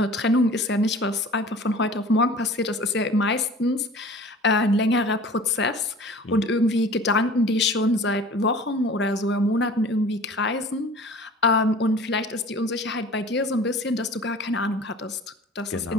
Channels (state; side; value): normal; both; correlation 0.43